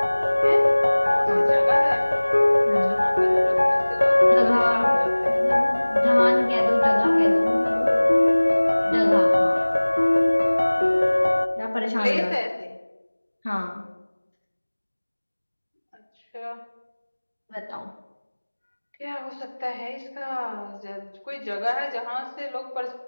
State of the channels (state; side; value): inverted; both; correlation -1.00